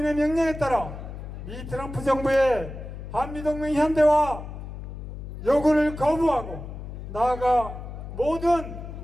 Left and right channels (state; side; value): noise; left; hum, 10 dB below the sound